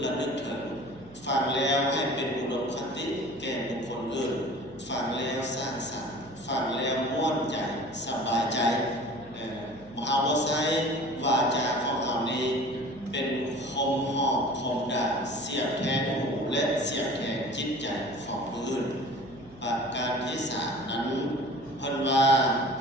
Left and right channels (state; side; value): noise; right; hum, 23 dB below the sound